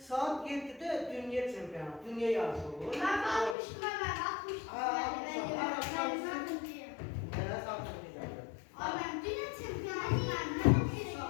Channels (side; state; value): right; drops out; at 3.6 s